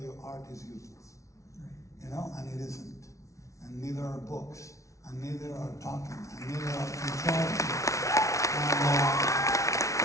art is useless. You know, and it isn't. And neither are books, and neither are talking, and neither are controlling.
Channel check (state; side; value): late; right; 0.15 ms